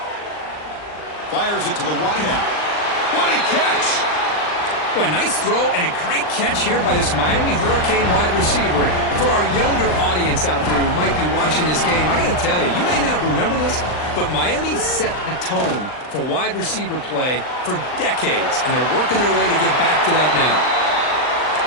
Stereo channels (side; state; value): right; late; 39 ms